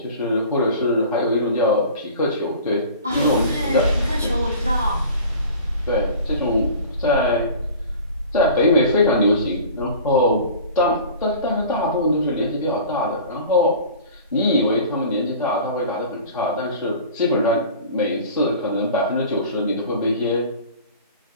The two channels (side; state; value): both; inverted; correlation -0.41